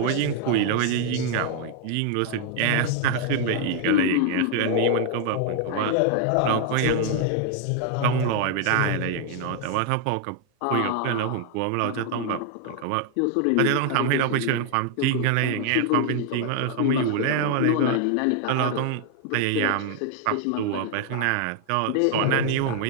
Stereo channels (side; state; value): both; different; correlation 0.00